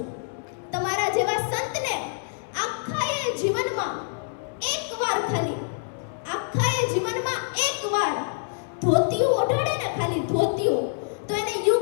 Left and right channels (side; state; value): right; silent; digital silence